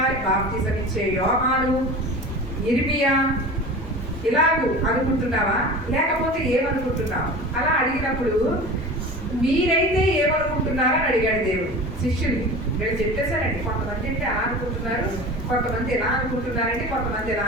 బాప్తిసం ఇచ్చే యోహాను, ఇర్మియా ఇలాగూ అనుకుంటున్నావా, లేకపోతే ఏమనుకుంటున్నావు? అలా అడిగినప్పుడు మీరైతే ఏమనుకుంటున్నారని అడిగాడు దేవుడు శిష్యుల్ని. వీళ్ళు చెప్పేశారండి, కొంతమంది అంటే అలా అనుకుంటున్నారు, కొంతమంది ఎలా అనుకుంటున్నారంటే కొంతమంది ఎలా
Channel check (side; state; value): both; normal; correlation 0.35